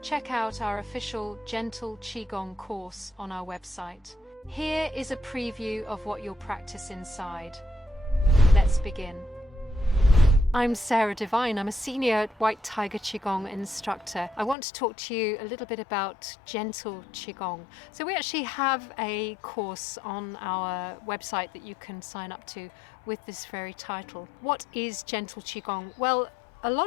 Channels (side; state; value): right; drops out; at 14.6 s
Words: check out our official Gentle Qigong course on our website. Here is a preview of what you'll practice inside. Let's begin. I'm Sarah Devine. I'm a Senior White Tiger Qigong Instructor. I want to talk to you a little bit about Gentle Qigong. So we actually have a course on our website that you can sign up to with this very title. What is Gentle Qigong? Well, a